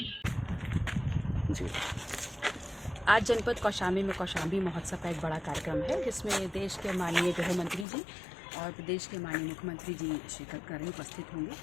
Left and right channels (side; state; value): right; drops out; at 7.9 s